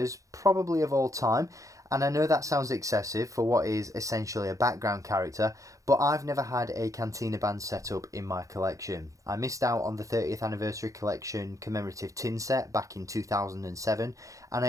probably of all time, and I know that sounds excessive for what is essentially a background character, but I've never had a Cantina band set up in my collection. I missed out on the 30th anniversary collection commemorative tin set back in 2007, and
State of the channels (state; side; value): late; left; 0.16 ms